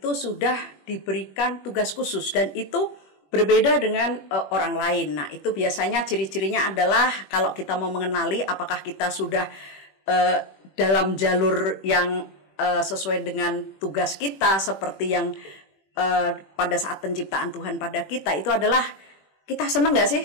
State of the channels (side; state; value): right; late; 21 ms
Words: sudah diberikan tugas khusus, dan itu berbeda dengan orang lain. Nah, itu biasanya ciri-cirinya adalah kalau kita mau mengenali apakah kita sudah dalam jalur yang sesuai dengan tugas kita, seperti yang pada saat penciptaan Tuhan pada kita, itu adalah kita senang gak